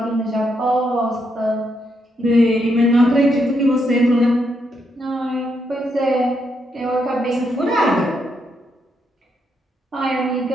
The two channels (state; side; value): normal; both; correlation 0.79